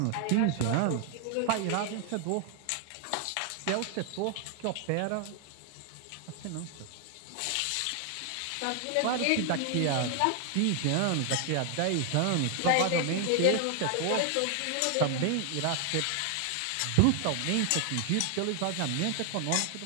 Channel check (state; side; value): different; both; correlation 0.00